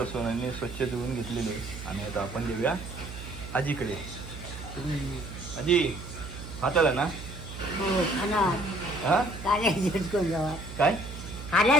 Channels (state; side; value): noise; right; hum, 11 dB below the sound